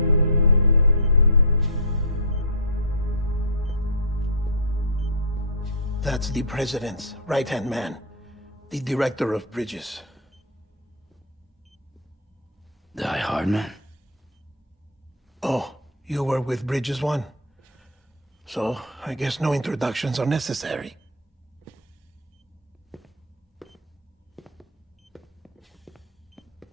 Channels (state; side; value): normal; both; correlation -0.07